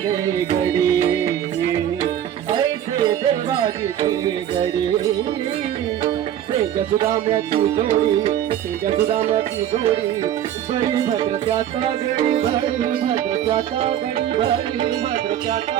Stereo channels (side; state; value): left; quieter; 10.8 dB